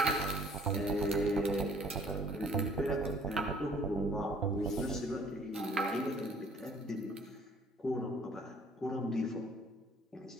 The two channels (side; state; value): both; normal; correlation 0.56